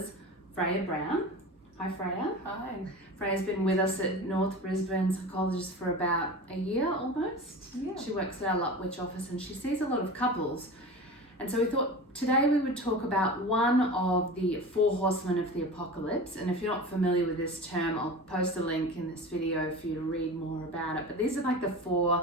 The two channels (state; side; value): normal; both; correlation 0.32